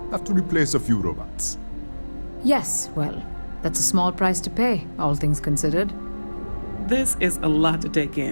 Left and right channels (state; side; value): inverted; both; correlation -1.00